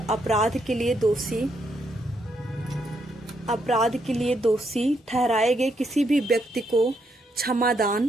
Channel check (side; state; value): both; normal; correlation 0.77